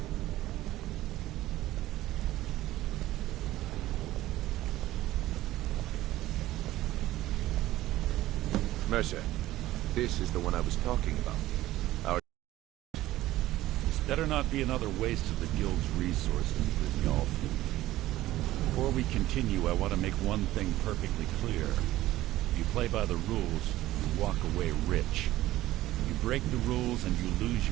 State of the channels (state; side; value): quieter; left; 15.6 dB